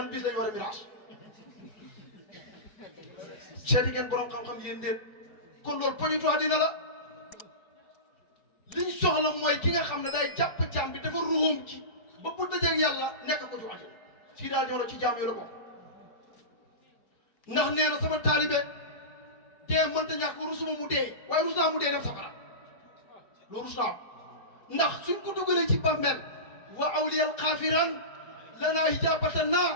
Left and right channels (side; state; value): right; late; 4.3 ms